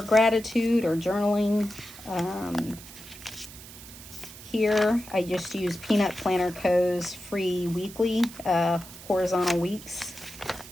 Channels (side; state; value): right; noise; hiss, 16 dB below the sound